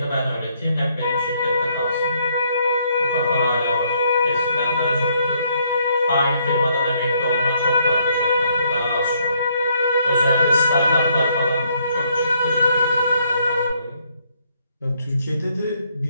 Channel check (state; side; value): inverted; both; correlation -0.70